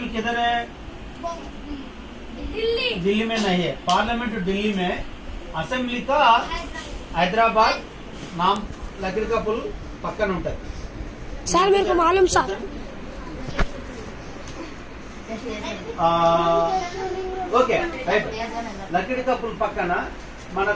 किधर है? दिल्ली में नहीं है. पार्लियामेंट दिल्ली में, असेंबली का हैदराबाद नाम लकड़ी का पुल पक्कन ఉంటుంది. सर मेरे को मालूम सर. Okay right. లకడి కప్పుల పక్కన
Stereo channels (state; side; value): identical; both; correlation 1.00